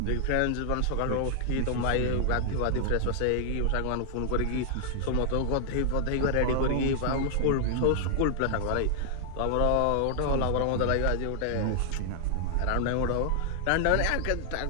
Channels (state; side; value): different; both; correlation -0.01